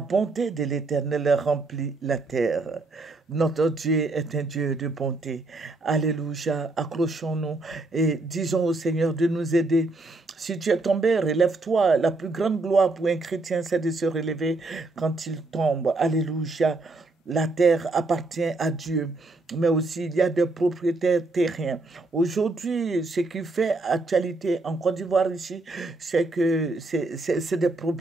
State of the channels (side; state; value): left; quieter; 3.1 dB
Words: de l'Éternel remplit la terre. Notre Dieu est un Dieu de bonté. Alléluia. Accrochons-nous et disons au Seigneur de nous aider. Si tu es tombé, relève-toi. La plus grande gloire pour un chrétien, c'est de se relever quand il tombe. Alléluia. La terre appartient à Dieu, mais aussi il y a des propriétaires terriens. Aujourd'hui, ce qui fait actualité en Côte d'Ivoire ici, c'est que c'est des